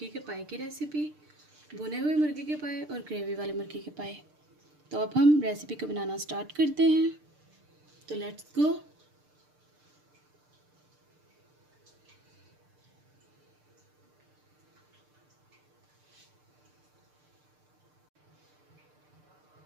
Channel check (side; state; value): left; late; 6.7 ms